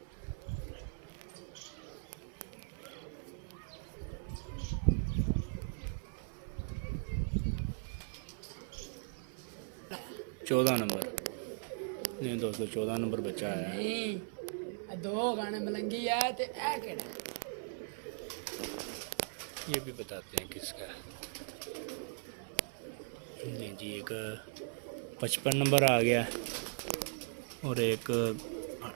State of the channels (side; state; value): left; silent; 52 dB below the other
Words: चौदह नंबर नहीं दोस्तों, 14 नंबर बच्चा है। नहीं दो गाने मलंगी है तो ऐ केड़ा ये भी बताते हैं किसका है। नहीं जी, एक 55 नंबर आ गया और एक